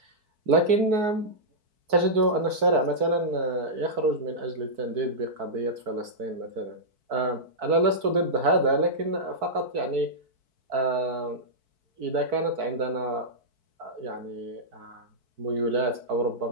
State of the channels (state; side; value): late; left; 4.6 ms